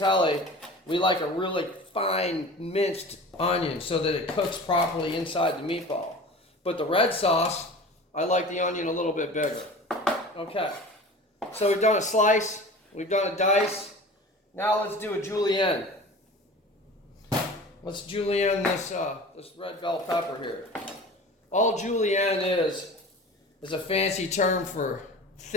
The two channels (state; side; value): normal; both; correlation 0.38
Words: we like a really fine minced onion so that it cooks properly inside the meatball. But the red sauce, I like the onion a little bit bigger. Okay, so we've done a slice, we've done a dice. Now let's do a julienne. Let's julienne this red bell pepper here. All julienne is a fancy term for